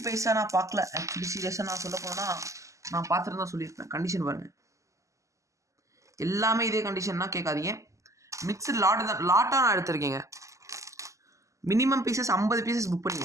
பைசா நான் பார்க்கல. ஆக்சுவலி சீரியஸாக நான் சொல்ல போனால் நான் பார்த்துட்டு தான் சொல்லியிருப்பேன். கண்டிஷன் பாருங்கள், எல்லாமே இதே கண்டிஷன்னா கேட்காதீங்க. மிக்சர் லாட்டாக நான் எடுத்திருக்கேங்க. மினிமம் பீசஸ் 50 பீசஸ் புக்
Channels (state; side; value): late; left; 0.16 ms